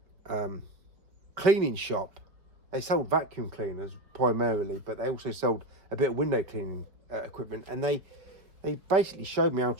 cleaning shop. They sold vacuum cleaners primarily, but they also sold a bit of window cleaning equipment, and they basically showed me how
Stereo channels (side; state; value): left; late; 4.7 ms